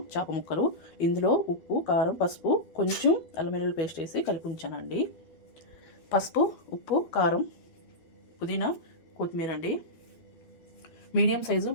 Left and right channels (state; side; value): late; right; 12 ms